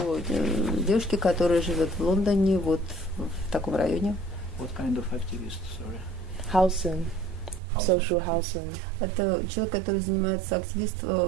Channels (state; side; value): drops out; left; at 7.6 s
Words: девушке, которая живет в Лондоне, вот в таком районе. What kind of activist, sorry? Housing. Social housing. Это человек, который занимается